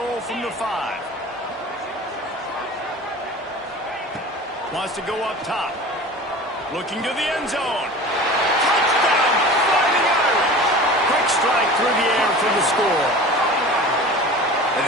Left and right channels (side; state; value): both; normal; correlation 0.38